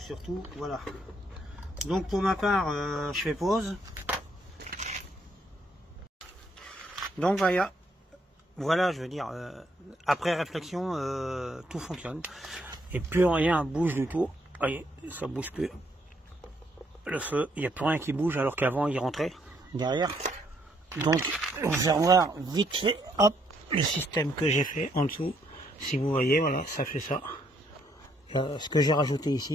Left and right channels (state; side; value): normal; both; correlation 0.71